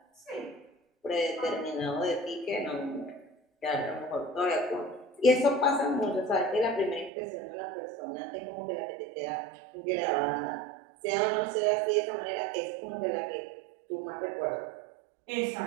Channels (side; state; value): left; drops out; at 7.1 s